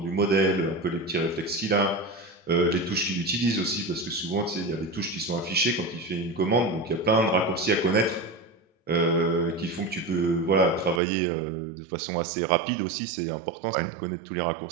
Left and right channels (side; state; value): left; drops out; at 11.0 s